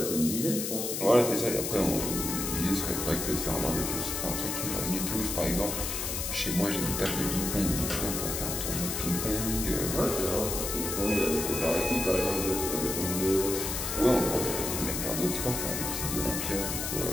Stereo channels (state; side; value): noise; left; hiss, 3 dB below the sound